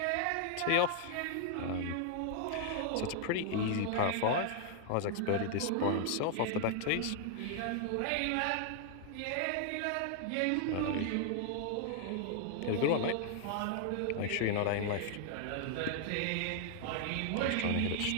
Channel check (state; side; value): different; both; correlation 0.00